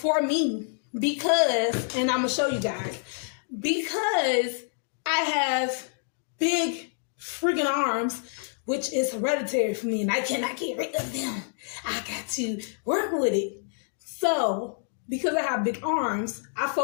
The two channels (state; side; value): silent; right; digital silence